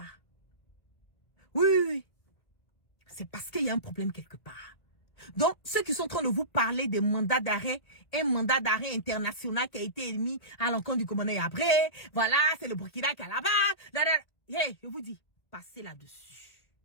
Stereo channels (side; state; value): right; late; 1.9 ms